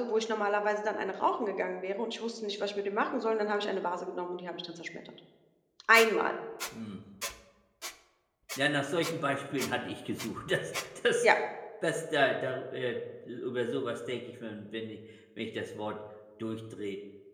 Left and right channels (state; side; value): identical; both; correlation 1.00